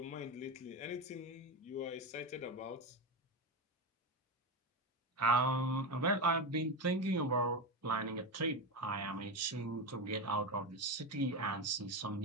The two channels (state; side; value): normal; both; correlation 0.16